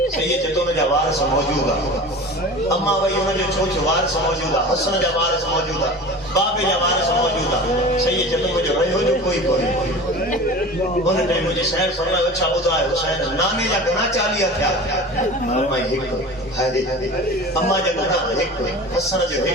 صحیح ہے تو ان جا وارث موجود ہے اما وہی ان جو ڇوچو وارث موجود ہے حسن جا وارث موجود ہے بابے جا وارث موجود ہے صحیح ہے تو مجھے رہو جو کوئی ان نے مجھے شہر فرمایا اچھا ٻڌايو حسين نانے جا گنا 40 تھیا میں ایک ہائے اما جا گنا ایک حسن جو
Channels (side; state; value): both; normal; correlation 0.36